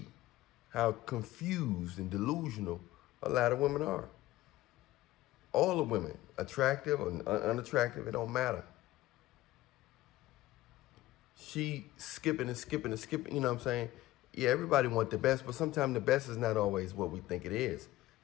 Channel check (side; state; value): right; quieter; 16.6 dB